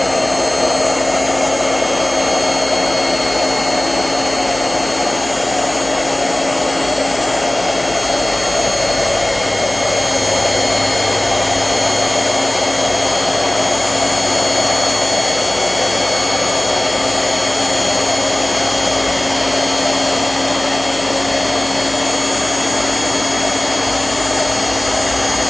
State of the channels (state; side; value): noise; left; hum, 16 dB below the sound